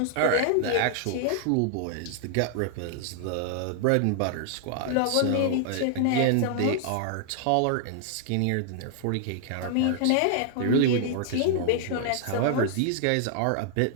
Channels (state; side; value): different; both; correlation 0.00